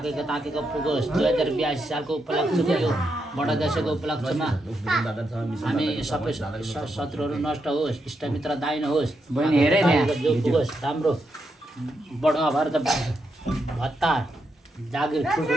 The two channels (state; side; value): normal; both; correlation 0.82